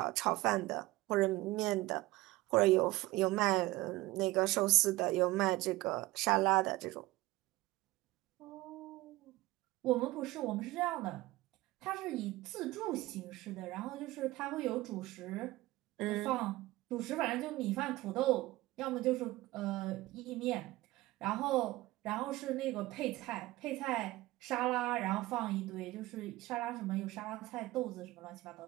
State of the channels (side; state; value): left; quieter; 18.8 dB